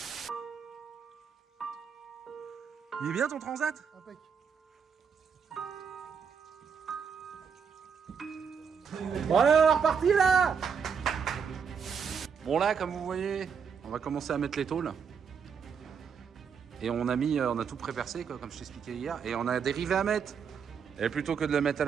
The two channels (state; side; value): quieter; left; 6.6 dB